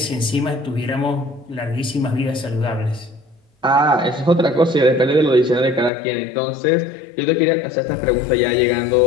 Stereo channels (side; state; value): right; drops out; at 5.9 s